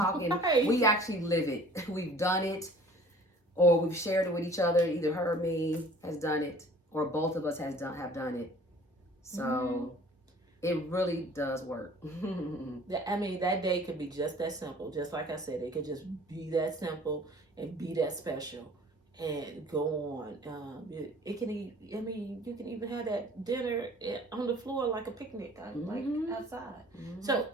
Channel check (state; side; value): normal; both; correlation 0.50